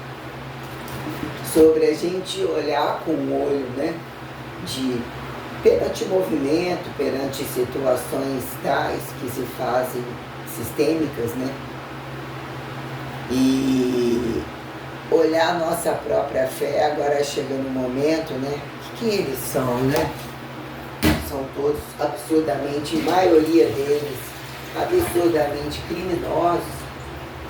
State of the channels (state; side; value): identical; both; correlation 1.00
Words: sobre a gente olhar com o olho, né, de perante movimento, perante situações tais que se fazem sistêmicas, né, e olhar a nossa própria fé. Agora chega no momento, né, que eles são, né? São todos absurdamente, a maioria deles, absurdamente criminosos